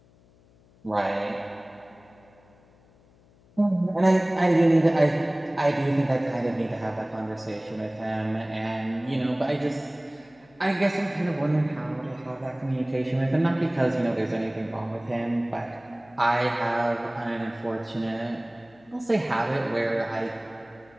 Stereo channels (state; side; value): noise; left; hum, 29 dB below the sound